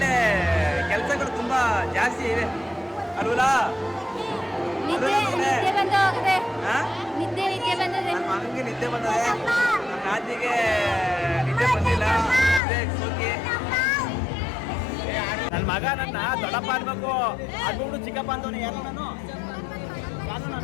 ಕೆಲಸಗಳು ತುಂಬಾ ಜಾಸ್ತಿ ಇವೆ ಅಲ್ವಲ್ಲ? ನನ್ನ ಮಗನಿಗೆ ನಿದ್ದೆ ಬಂದದೆ, ನನ್ನ ನಾದಿಗೆ ನಿದ್ದೆ ಬಂದಿಲ್ಲ. ನನ್ನ ಮಗ ನನ್ನ ದೊಡ್ಡಪ್ಪ ಅನ್ಬೇಕು, ಅದ್ಬಿಟ್ಟು ಚಿಕ್ಕಪ್ಪ ಅಂತವನು. ಯಾರು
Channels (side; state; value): right; drops out; at 12.6 s